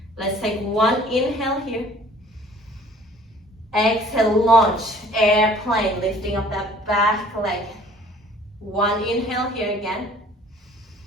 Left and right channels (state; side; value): normal; both; correlation 0.53